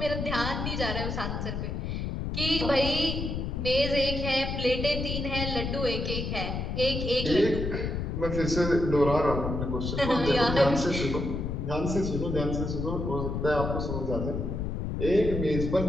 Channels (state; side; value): noise; left; rumble, 3 dB below the sound